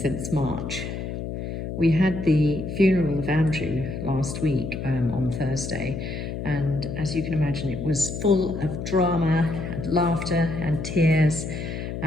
March. We had the funeral of Andrew last week on Thursday, and as you can imagine, it was full of drama and laughter and tears.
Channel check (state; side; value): noise; left; hum, 6 dB below the sound